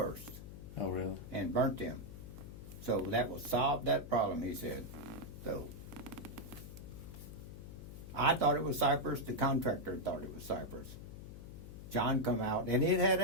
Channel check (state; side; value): noise; left; hum, 12 dB below the sound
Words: Oh, really? and burnt them. So that will solve that problem, he said. So I thought it was cypress. The contractor thought it was cypress. John come out, and it had